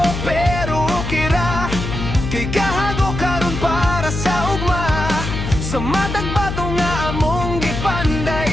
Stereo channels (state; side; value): noise; left; hum, 4 dB below the sound